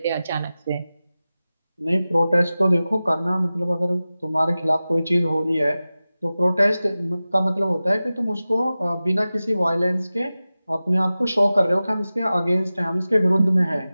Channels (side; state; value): both; inverted; correlation -0.96